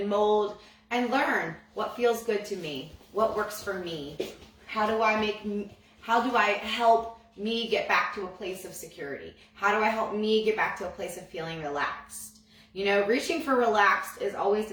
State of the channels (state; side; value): identical; both; correlation 1.00